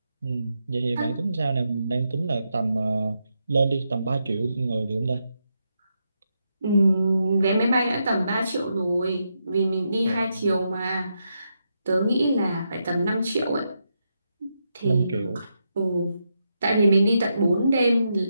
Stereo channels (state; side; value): inverted; both; correlation -0.83